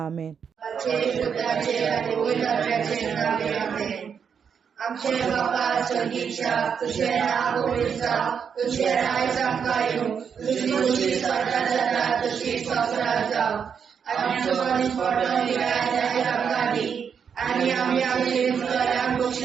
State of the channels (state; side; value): quieter; left; 7.0 dB